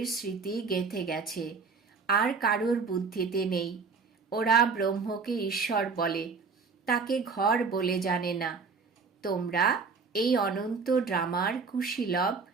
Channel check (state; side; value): quieter; left; 4.9 dB